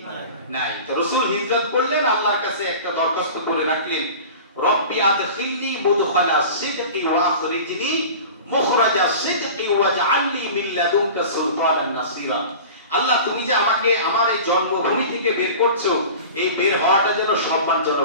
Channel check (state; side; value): inverted; both; correlation -0.37